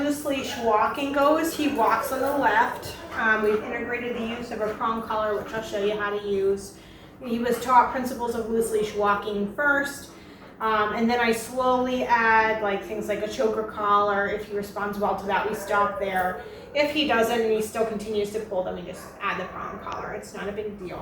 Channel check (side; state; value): both; identical; correlation 1.00